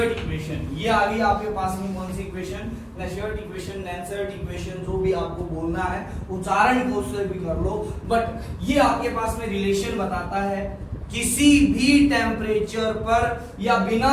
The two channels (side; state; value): both; identical; correlation 1.00